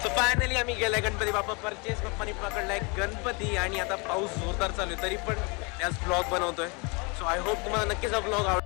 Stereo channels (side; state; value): right; quieter; 30.6 dB